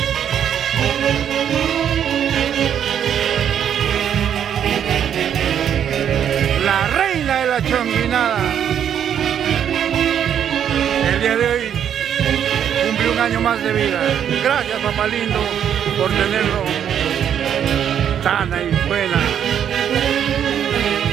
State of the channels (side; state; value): left; quieter; 9.1 dB